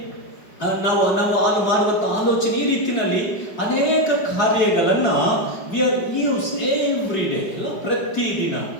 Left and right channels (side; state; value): right; late; 5.2 ms